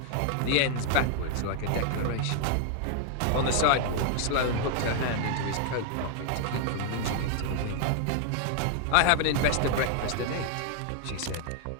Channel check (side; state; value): both; different; correlation 0.00